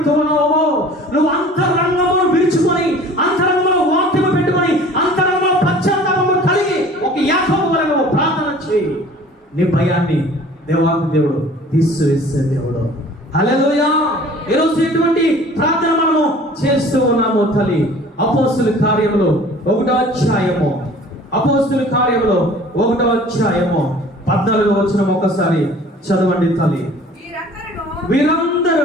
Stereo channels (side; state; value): both; normal; correlation 0.48